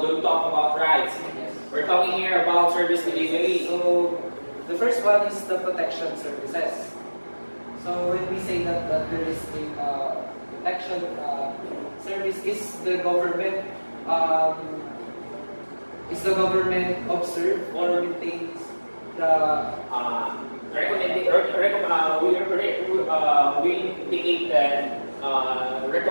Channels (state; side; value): inverted; both; correlation -1.00